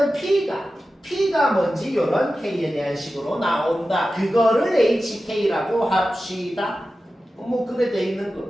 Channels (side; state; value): both; normal; correlation 0.93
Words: p가 뭔지 요런 k에 대한 식으로 나온다. 그거를 hk라고 합시다. 뭐 그래 돼 있는